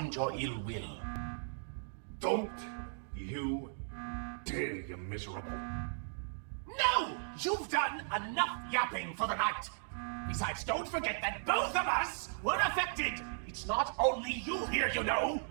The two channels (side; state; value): left; silent; digital silence